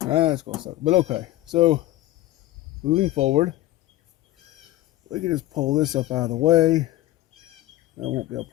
gonna suck. But okay, so moving forward, we can just pull this up out of the way. That won't be a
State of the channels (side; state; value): right; quieter; 15.6 dB